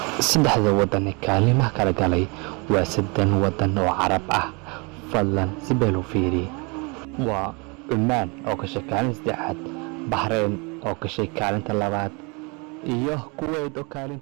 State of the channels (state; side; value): quieter; left; 30.2 dB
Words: saddexda wadan ee kaalimaha kala galay waa 3 wadan oo Carab ah. fadlan si beel u fiiri. waa Oman oo ka shaqeynaysa saddexaad, Bahrain oo ka shaqeynaysa kaalinta labaad, iyo Kuwait oo